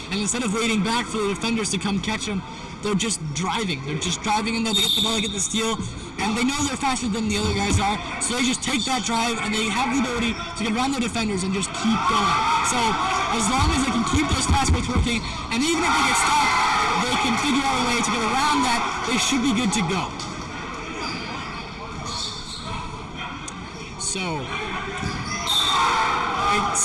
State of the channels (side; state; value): both; identical; correlation 1.00